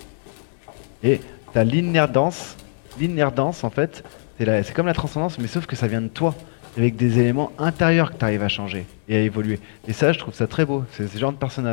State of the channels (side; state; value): right; silent; digital silence